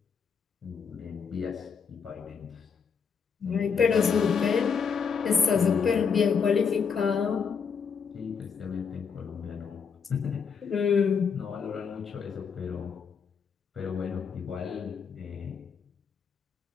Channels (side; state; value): right; quieter; 6.2 dB